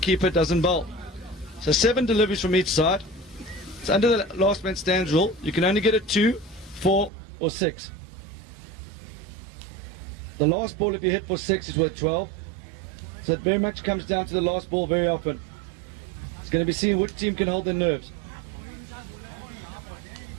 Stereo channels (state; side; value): drops out; left; at 7.1 s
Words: doesn't bowl. So 7 deliveries from each side. It's under the last man stands rule. You can only get a 2, 4 or 6. The last ball, if you hit for 6, is worth 12. So it very much comes down to the last ball very often. It's going to be seen which team can hold their nerves.